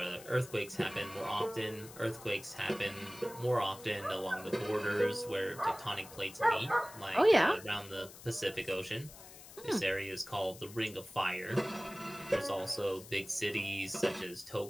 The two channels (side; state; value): left; noise; hiss, 17 dB below the sound